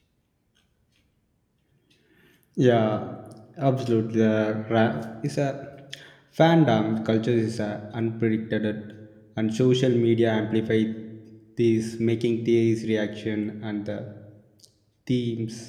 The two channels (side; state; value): both; identical; correlation 1.00